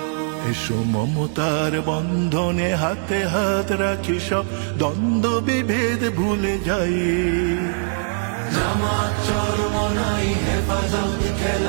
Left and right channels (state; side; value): silent; left; digital silence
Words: মমতার বন্ধনে হাতে হাত রাখি, সব দ্বন্দ্ব বিভেদ ভুলে যাই। জামাত চরমনাই হেফাজত